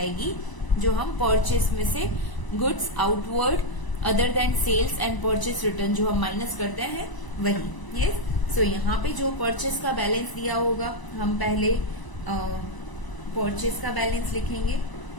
जो हम परचेस में से goods outward other than sales and purchase return जो हम माइनस करते हैं वही. यस, सो यहाँ पे जो परचेस का बैलेंस दिया होगा हम पहले परचेस का बैलेंस लिखेंगे.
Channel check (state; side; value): late; right; 1.0 ms